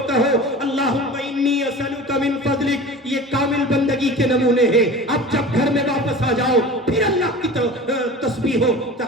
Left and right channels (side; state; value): both; normal; correlation 0.36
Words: کہو اللہم انی اسألک من فضلک. یہ کامل بندگی کے نمونے ہیں. اب جب گھر میں واپس آ جاؤ پھر اللہ کی تسبیح و